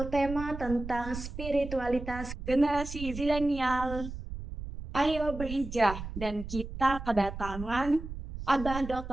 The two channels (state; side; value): noise; right; rumble, 9 dB below the sound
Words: tema tentang spiritualitas generasi zilenial. Ayo berhijrah, dan kita kedatangan Abah